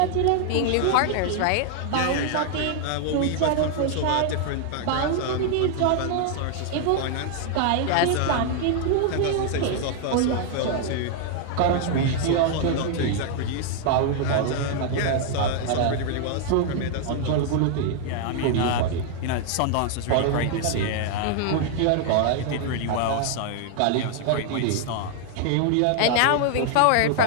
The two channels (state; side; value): different; both; correlation 0.00